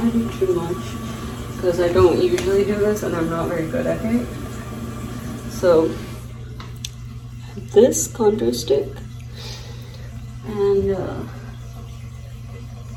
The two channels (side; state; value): both; identical; correlation 1.00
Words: to do too much because I don't usually do this and I'm not very good at it. So this contour stick, and